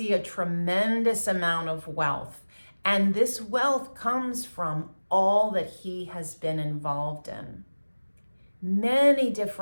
a tremendous amount of wealth. And this wealth comes from all that he has been involved in. Many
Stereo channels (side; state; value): both; inverted; correlation -1.00